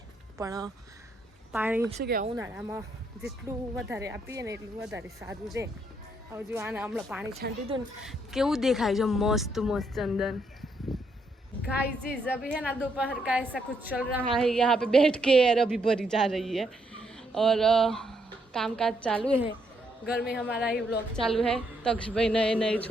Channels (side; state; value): both; normal; correlation 0.75